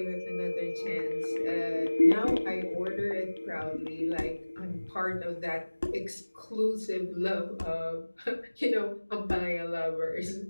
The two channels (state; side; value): inverted; both; correlation -1.00